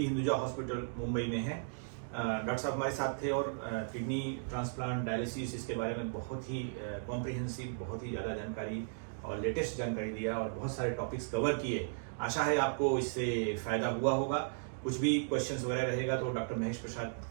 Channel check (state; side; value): silent; left; digital silence